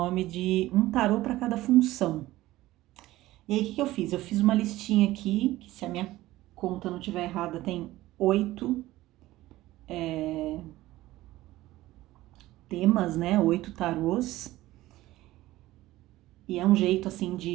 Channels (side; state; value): left; quieter; 16.7 dB